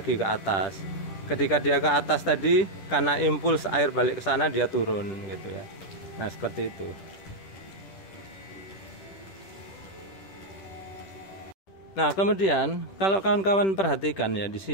ke atas. Ketika dia ke atas tadi, karena impuls air balik ke sana, dia turun gitu ya. Nah, seperti itu. Nah, kemudian kalau kawan-kawan perhatikan ya di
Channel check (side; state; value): right; late; 10 ms